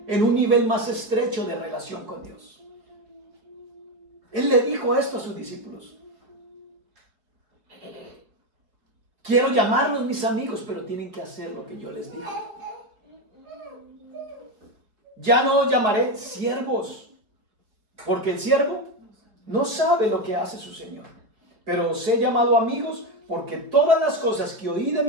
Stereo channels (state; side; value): late; left; 4.6 ms